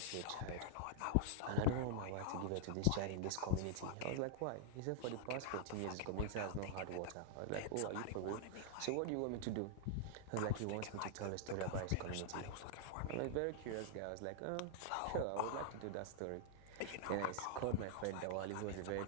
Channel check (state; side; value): different; both; correlation -0.01